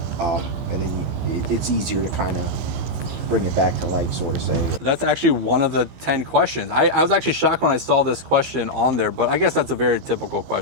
and then it's easier to kind of bring it back to life, sort of say. That's actually one of the 10 questions. I was actually shocked when I saw this question on there, but I guess that's a very typical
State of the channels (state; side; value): late; left; 15 ms